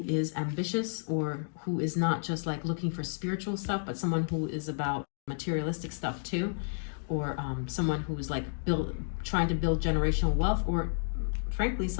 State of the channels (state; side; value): silent; right; digital silence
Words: is ambitious, or who is not just like looking for spiritual stuff, but someone who is about materialistic stuff too, or someone who is like trying to build generational wealth, or frankly